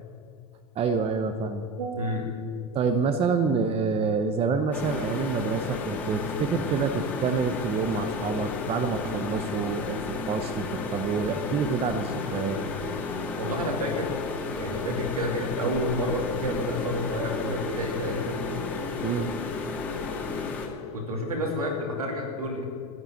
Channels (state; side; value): normal; both; correlation 0.24